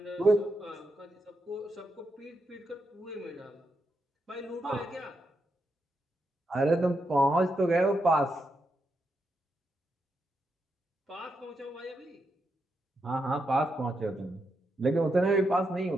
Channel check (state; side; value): normal; both; correlation 0.83